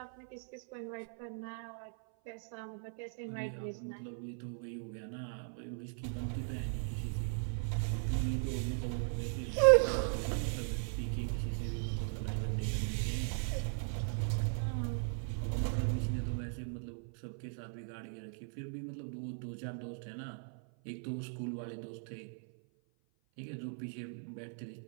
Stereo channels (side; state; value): left; silent; 52 dB below the other